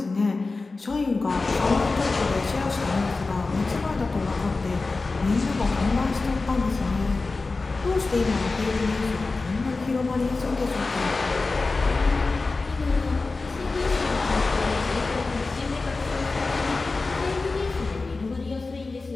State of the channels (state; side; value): quieter; right; 3.7 dB